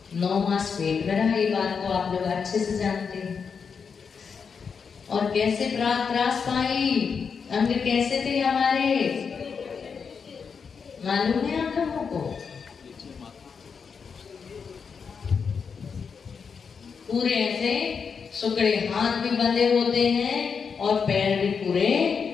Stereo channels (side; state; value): right; quieter; 6.0 dB